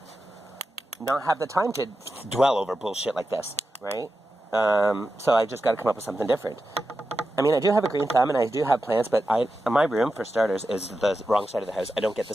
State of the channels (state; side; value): normal; both; correlation 0.90